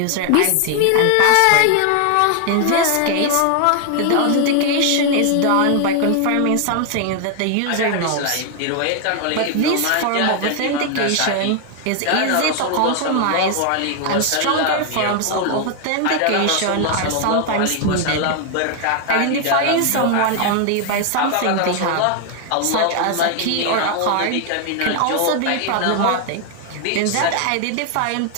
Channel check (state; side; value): different; both; correlation 0.00